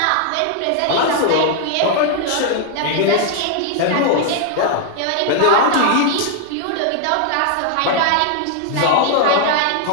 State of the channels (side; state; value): both; different; correlation 0.00